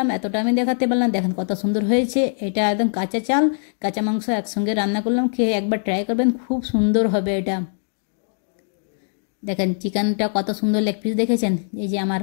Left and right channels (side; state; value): right; silent; digital silence